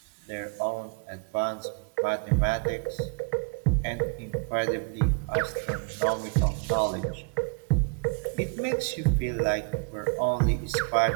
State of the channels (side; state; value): left; quieter; 33.0 dB